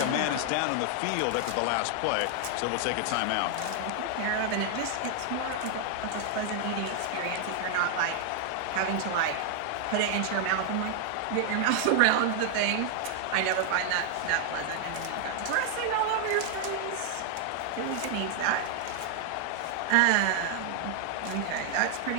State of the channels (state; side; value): different; both; correlation 0.00